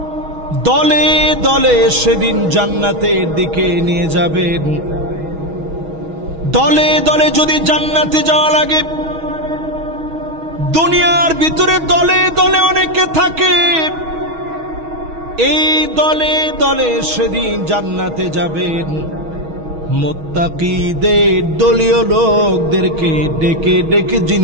দলে দলে সেদিন জান্নাতের দিকে নিয়ে যাবেন। দলে দলে যদি জান্নাতে যাওয়া লাগে, দুনিয়ার ভিতরে দলে দলে অনেকে থাকে, এই দলে দলে সেদিন জান্নাতে যাবেন। মুত্তাকীদের দলীয় লোকদেরকে ডেকে ডেকে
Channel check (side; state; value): left; late; 6.3 ms